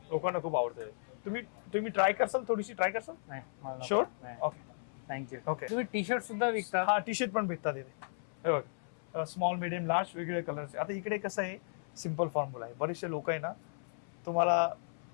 लोकांना खूप आवडते. तुम्ही ट्राय करसाल, थोडीशी ट्राय करसाल? नाही. शुअर. Okay, thank you. ओके. तुम्ही टी शर्ट सुद्धा विकता? हा, टी शर्ट पण भेटतात इथे. हे बघ, स्मॉल, मिडियम, लार्ज वेगवेगळे कलरचे. आता इकडे कसं आहे, सिम्पल फॉर्म्युला आहे. बरेचसे लोक आहे ना, तुम्हाला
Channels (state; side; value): silent; right; 54 dB below the other